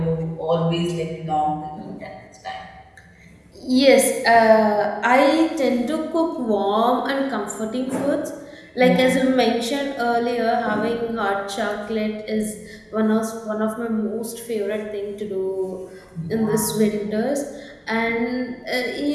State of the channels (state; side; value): identical; both; correlation 1.00